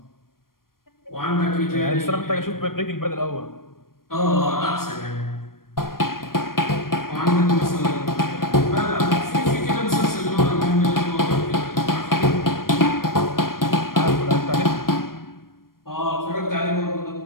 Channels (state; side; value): late; right; 0.92 ms